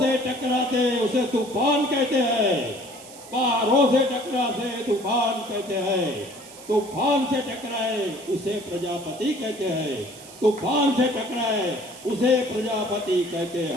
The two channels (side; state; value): right; noise; hiss, 18 dB below the sound